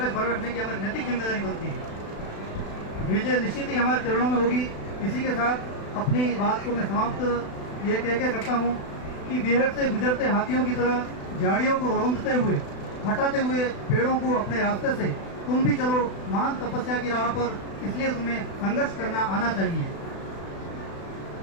भर रखने की हमारी नैतिक जिम्मेदारी बनती है। विजय निश्चित ही हमारे चरणों में होगी। इसी के साथ अपनी बात को मैं समाप्त ये कह के करता हूँ कि बिहार से गुजरते हाथियों की तरह झाड़ियों को रौंदते हुए, हटाते हुए पेड़ों को अपने रास्ते से तुम भी चलो महान तपस्या की राह पर। इसलिए तुम्हें संघर्ष करना आना चाहिए।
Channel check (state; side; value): late; right; 36 ms